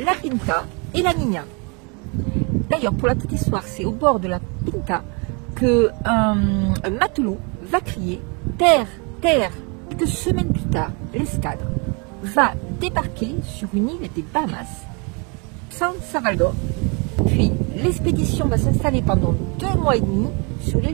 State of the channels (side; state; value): left; quieter; 32.7 dB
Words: Pinta et la Niña. D'ailleurs, pour la petite histoire, c'est au bord de la Pinta qu'un matelot va crier « Terre, terre !» Quelques semaines plus tard, l'escadre va débarquer sur une île des Bahamas, San Salvador. Puis l'expédition va s'installer pendant 2 mois et demi sur